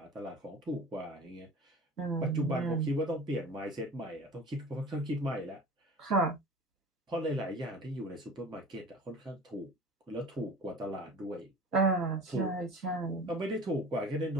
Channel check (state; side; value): normal; both; correlation 0.40